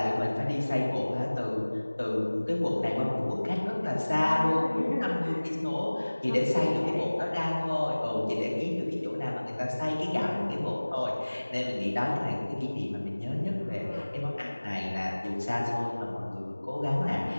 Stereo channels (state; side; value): inverted; both; correlation -1.00